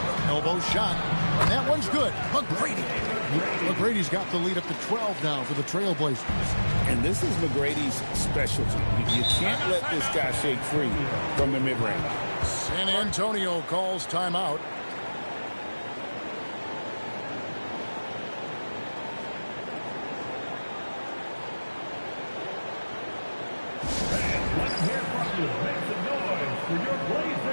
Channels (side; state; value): both; inverted; correlation -1.00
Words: Elbow shot. And that one's good. McGrady's got the lead up to 12 now for the Trailblazers. And this is McGrady's specialty. You can't let this guy shake free from the mid-range. San Antonio calls timeout. Let's hear from you. Make some noise for your